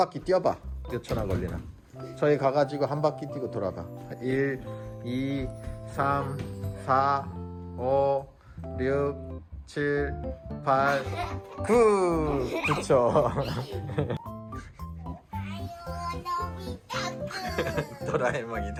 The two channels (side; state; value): both; identical; correlation 1.00